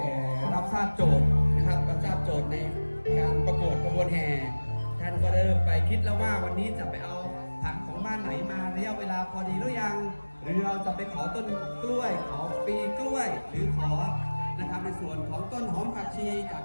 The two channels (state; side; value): inverted; both; correlation -1.00